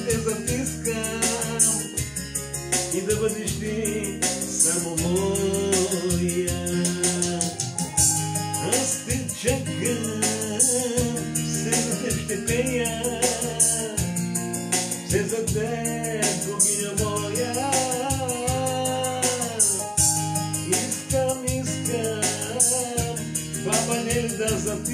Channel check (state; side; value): identical; both; correlation 1.00